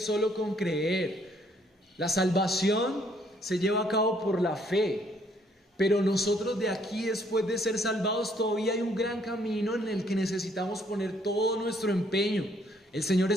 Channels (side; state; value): both; normal; correlation 0.66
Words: con creer. La salvación se lleva a cabo por la fe, pero nosotros de aquí, después de ser salvados, todavía hay un gran camino en el que necesitamos poner todo nuestro empeño. El Señor